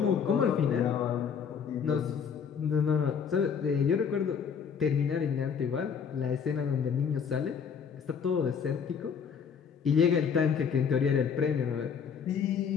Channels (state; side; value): quieter; right; 6.8 dB